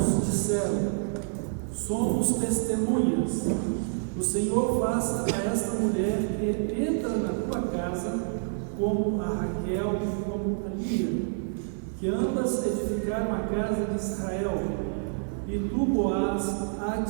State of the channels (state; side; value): silent; left; 57 dB below the other